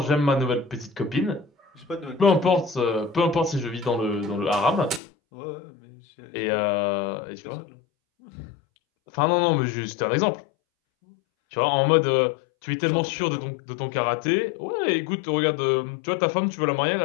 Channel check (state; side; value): drops out; right; at 5.0 s